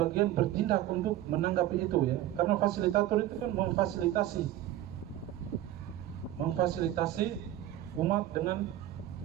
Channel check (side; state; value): left; quieter; 13.3 dB